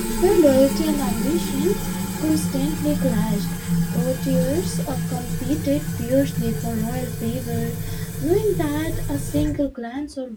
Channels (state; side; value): identical; both; correlation 1.00